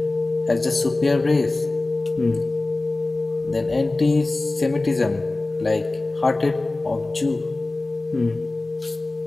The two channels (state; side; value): quieter; right; 3.0 dB